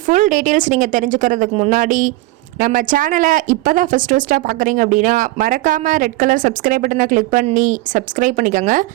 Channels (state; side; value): quieter; left; 19.4 dB